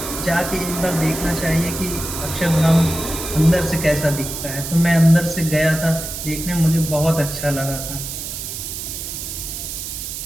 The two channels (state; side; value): noise; right; hiss, 7 dB below the sound